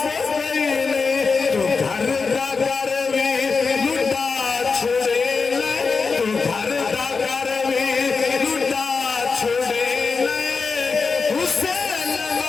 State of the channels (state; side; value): quieter; right; 4.7 dB